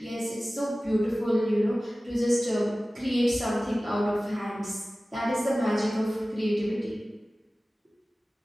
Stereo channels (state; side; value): normal; both; correlation 0.97